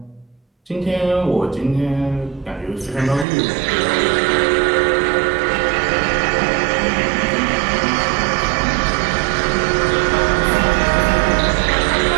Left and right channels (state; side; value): drops out; left; at 3.2 s